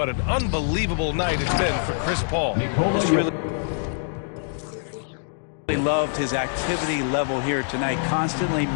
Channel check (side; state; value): right; silent; digital silence